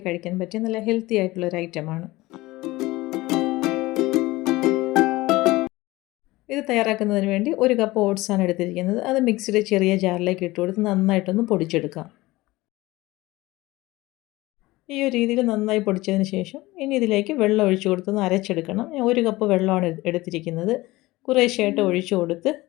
കഴിക്കാൻ പറ്റിയ നല്ല ഹെൽത്തി ആയിട്ടുള്ളൊരു ഐറ്റമാണ്. ഇത് തയ്യാറാക്കുന്നതിന് വേണ്ടി 1 കപ്പ് ഓട്സാണ് എടുത്തിരിക്കുന്നത്. അത് മിക്സിയുടെ ചെറിയ ജാറിലേക്ക് ഇട്ട് കൊടുത്ത് നന്നായിട്ടൊന്ന് പൊടിച്ചെടുക്കാം. ഈ ഒരു രീതിയിൽ നന്നായി പൊടിച്ചതിന് ശേഷം ഇനി ഇതിലേക്ക് വെള്ളം ഒഴിച്ചു കൊടുത്തൊന്ന് അരച്ചെടുക്കണം. ഞാൻ 1 കപ്പ് വെള്ളമാണ് എടുത്തിരിക്കുന്നത്. കുറേശ്ശെയായിട്ട് ഒഴിച്ചു കൊടുത്ത്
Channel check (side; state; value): right; quieter; 19.6 dB